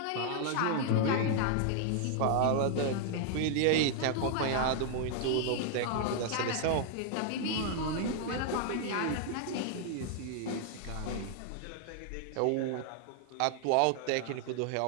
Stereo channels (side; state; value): both; different; correlation 0.00